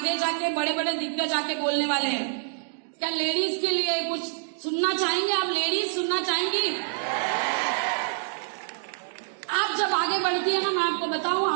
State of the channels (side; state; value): left; silent; digital silence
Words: जाके बड़े बड़े दिग्गज आके बोलने वाले हैं। क्या लेडीज के लिए कुछ सुनना चाहेंगे आप? लेडीज सुनना चाहेंगी? आप जब आगे बढ़ती है ना, मैं आपको बताऊं,